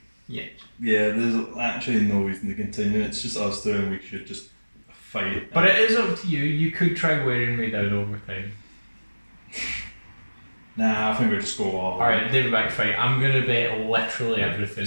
Yeah. Yeah, there's actually no reason to continue. It's just us two, and we should just fight. But it is up to you. You could try wearing me down over time. Nah, I think we just go all. Alright, David back fight. I'm gonna bet literally everything.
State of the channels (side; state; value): both; inverted; correlation -1.00